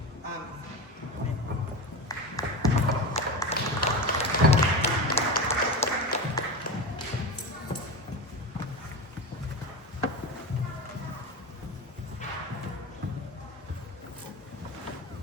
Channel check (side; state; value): both; normal; correlation 0.23